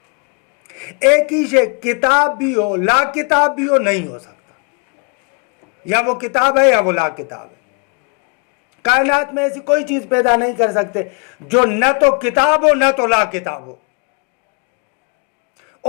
ایک ہی شے کتاب بھی ہو لا کتاب بھی ہو نہیں ہو سکتا، یا وہ کتاب ہے یا وہ لا کتاب ہے۔ کائنات میں ایسی کوئی چیز پیدا نہیں کر سکتے جو نہ تو کتاب ہو نہ تو لا کتاب ہو،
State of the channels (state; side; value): quieter; right; 34.4 dB